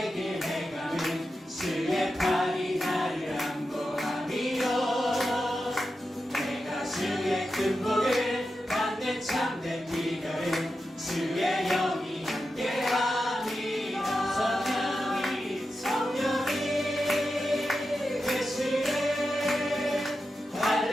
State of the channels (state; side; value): normal; both; correlation 0.90